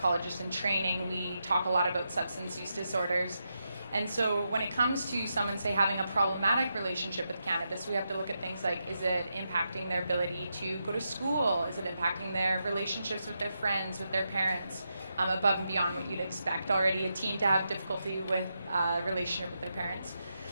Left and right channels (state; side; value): inverted; both; correlation -0.85